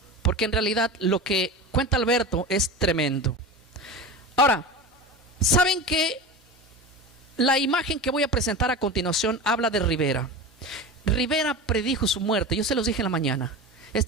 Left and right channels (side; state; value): both; normal; correlation 0.28